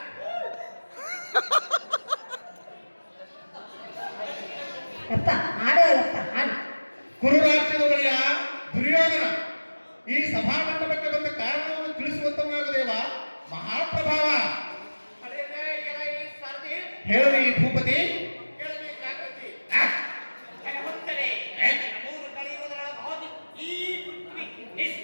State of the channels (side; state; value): both; inverted; correlation -1.00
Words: ಅಪ್ಪ ಆಡೋಲ್ಲಪ್ಪ ಆಡು. ಕುರುರಾಜ್ಯದ ಒಡೆಯ ದುರ್ಯೋಧನ ಈ ಸಭಾಮಂಟಪಕ್ಕೆ ಬಂದ ಕಾರಣವನ್ನು ತಿಳಿಸುವಂತವನಾಗದೇವ ಮಹಾಪ್ರಭಾವ. ಹೇಳಿ ಭೂಪತಿ.